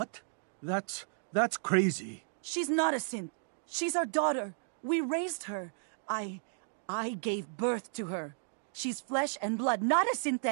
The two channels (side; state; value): left; silent; digital silence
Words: That's crazy. She's not a synth. She's our daughter. We raised her. I I gave birth to her. She's flesh and blood, not a